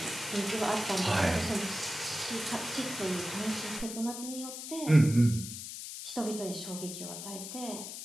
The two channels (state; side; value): noise; left; hiss, 8 dB below the sound